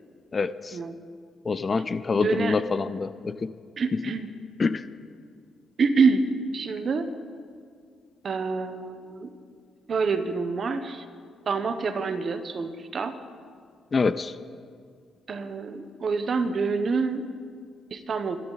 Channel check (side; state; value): both; normal; correlation 0.83